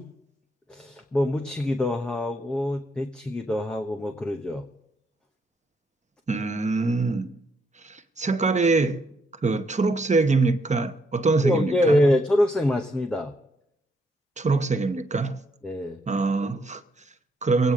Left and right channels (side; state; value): both; normal; correlation 0.74